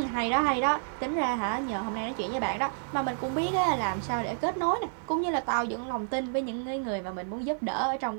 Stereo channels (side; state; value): left; silent; digital silence